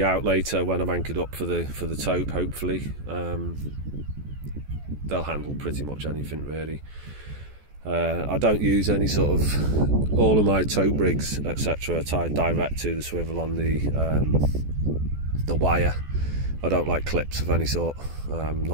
out later when I'm anchored up for the tope. Hopefully, they'll handle pretty much anything really. I don't use any sort of, all of my tope rigs etc. are tied direct to the swivel on the wire. I don't like clips of any sort,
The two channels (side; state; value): left; late; 14 ms